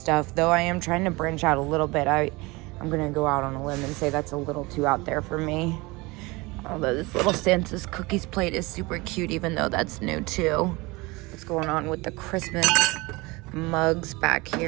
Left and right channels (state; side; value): quieter; left; 23.8 dB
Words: though I am trying to branch out a little bit. I'm gonna go out on a limb and say that's a little too out there for me. Although this little Santa's cookies plate is super cute, even though that's new too. What's going on with the Christmas mugs back